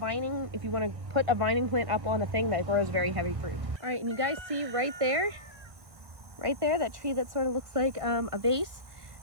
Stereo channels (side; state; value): left; late; 1.6 ms